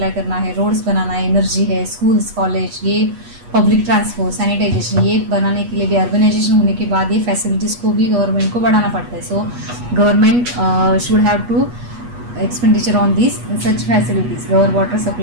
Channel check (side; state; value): left; late; 8.3 ms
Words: करना है, रोड्स बनाना है, एनर्जी है, स्कूल्स, कॉलेज, ये पब्लिक ट्रांसपोर्ट, सैनिटाइजेशन, ये बनाने के लिए भी अर्बनाइजेशन होने के बाद ये फैसिलिटीज़ को भी गवर्नमेंट को बढ़ाना पड़ता है. So government should have to expenditure on these such facilities, water